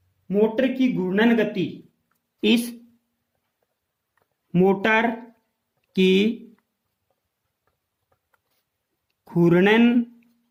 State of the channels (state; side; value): identical; both; correlation 1.00